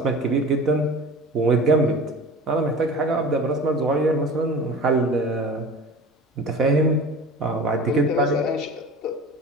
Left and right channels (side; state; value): both; normal; correlation 0.38